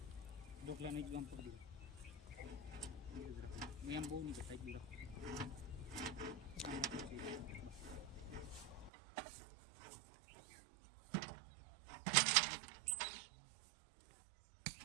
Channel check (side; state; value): left; drops out; at 8.9 s